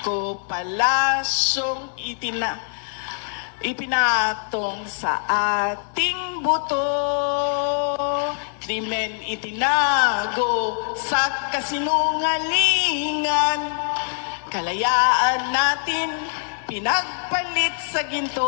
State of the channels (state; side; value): silent; right; 63 dB below the other